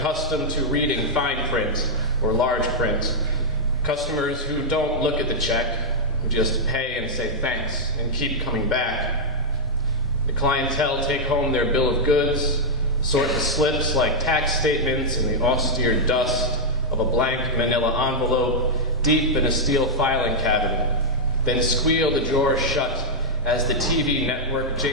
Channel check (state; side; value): normal; both; correlation -0.06